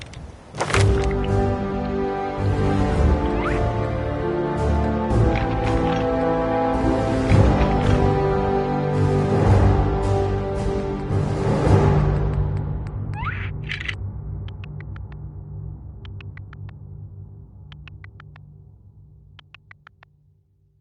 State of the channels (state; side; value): identical; both; correlation 1.00